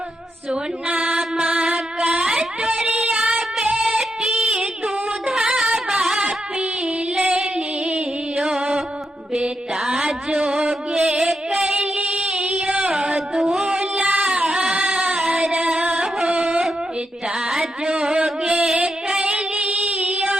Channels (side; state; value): both; normal; correlation 0.84